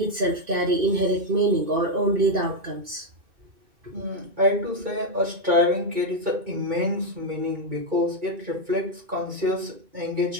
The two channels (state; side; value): late; left; 2.3 ms